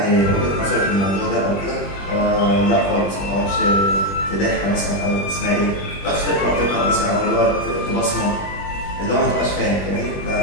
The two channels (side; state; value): right; late; 21 ms